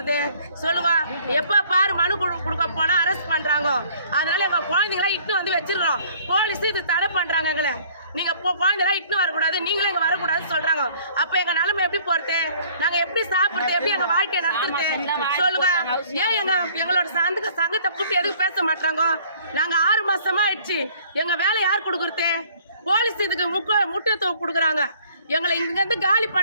சொல்லுங்க? எப்ப பாரு மனு கொடுக்க போனா அரெஸ்ட் பண்றாங்க. அதனால எங்க குழந்தைங்களா இட்டு வந்து வச்சிருக்கிறோம். போலீஸ் இது தடை பண்றாங்க. எங்களை நீங்க குழந்தைலாம் இட்டு வரக்கூடாது, நீங்களும் இங்க வரக்கூடாதுன்னு சொல்றாங்க. அப்ப எங்க நிலைமை எப்படி போறது? நாங்க எப்படி சாப்பிடுறது? எப்படி எங்க வாழ்க்கையை நடத்துறது சொல்லுங்க? ஏன் எங்களோட சங்கத்தை கூட்டி எதுக்கு பேச மாட்டாங்க? நாங்க 6 மாசமா ஆயிடுச்சு. எங்க வேலை யார் கொடுக்குறது? போலீஸ் இதுக்கு முக்கியத்துவம் கொடுக்குறாங்க. எங்களை இங்க இருந்து காலி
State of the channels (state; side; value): inverted; both; correlation -0.56